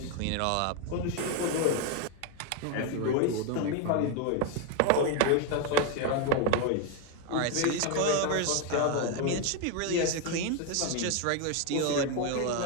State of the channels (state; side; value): different; both; correlation 0.01